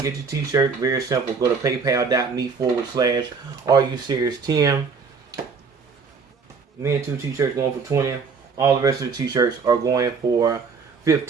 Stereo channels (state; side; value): quieter; left; 5.2 dB